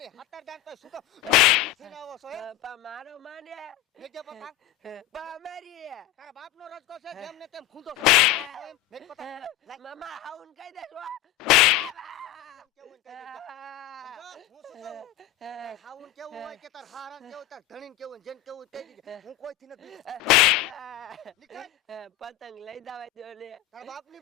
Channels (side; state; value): right; quieter; 13.9 dB